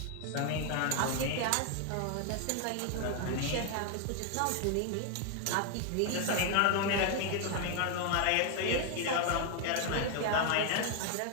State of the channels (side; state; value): both; different; correlation 0.01